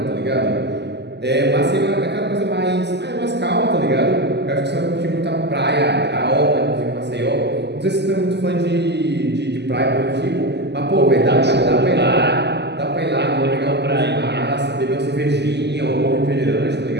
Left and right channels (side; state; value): left; late; 0.50 ms